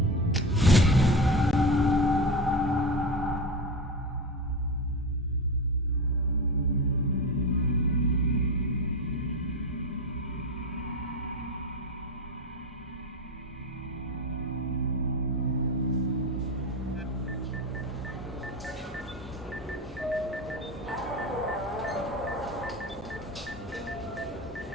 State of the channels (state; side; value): normal; both; correlation 0.22